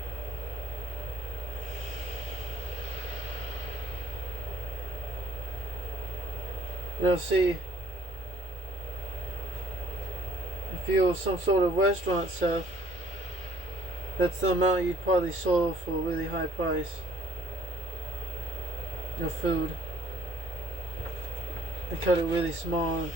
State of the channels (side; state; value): both; normal; correlation 0.60